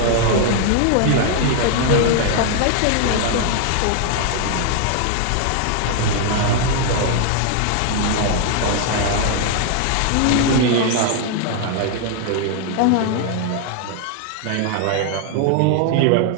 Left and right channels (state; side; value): different; both; correlation 0.00